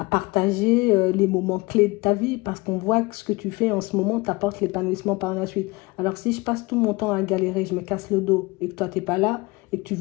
partager les moments clés de ta vie, parce qu'on voit que ce que tu fais en ce moment t'apporte l'épanouissement par la suite. Alors, si je passe tout mon temps à galérer, je me casse le dos, et que toi, t'es pas là, et que tu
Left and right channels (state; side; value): quieter; right; 23.9 dB